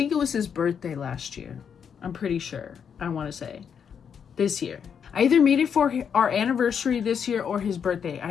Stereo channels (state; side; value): quieter; right; 7.4 dB